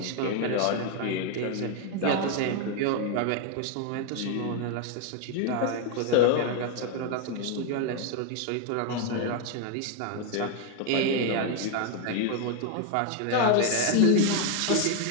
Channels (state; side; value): different; both; correlation 0.01